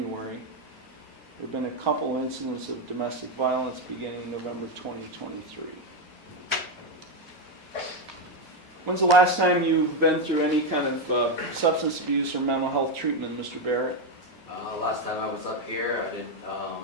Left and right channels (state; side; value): normal; both; correlation 0.06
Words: There have been a couple incidents of domestic violence beginning in November 2023. When's the last time you've been through any kind of substance abuse or mental health treatment, Mr. Barrett? Last time I was up here,